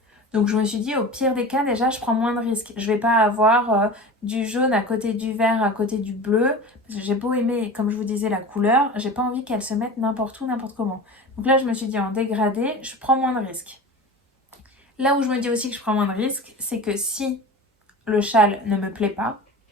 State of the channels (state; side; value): normal; both; correlation 0.33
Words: Donc je me suis dit, au pire des cas, déjà, je prends moins de risques. Je vais pas avoir du jaune à côté du vert, à côté du bleu. Parce que j'ai beau aimer, comme je vous disais, la couleur, j'ai pas envie qu'elle se mette n'importe où, n'importe comment. Donc là, je me suis dit, en dégradé, je prends moins de risques. Là où je me dis aussi que je prends moins de risques, c'est que si le châle ne me plaît pas,